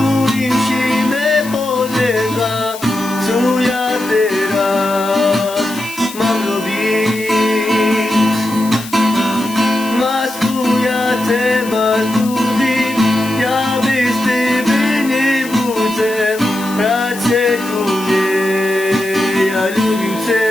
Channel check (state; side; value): noise; left; hiss, 14 dB below the sound